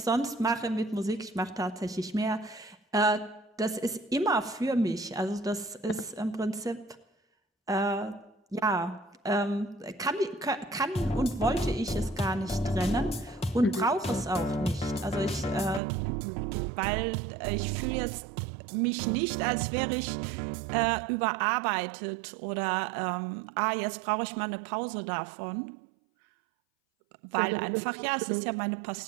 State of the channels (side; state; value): left; drops out; at 15.8 s